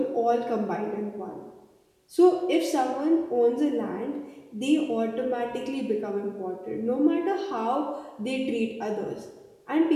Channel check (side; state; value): both; identical; correlation 1.00